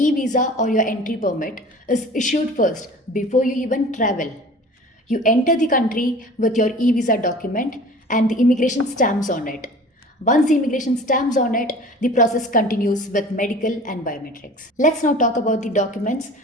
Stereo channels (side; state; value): both; normal; correlation 0.43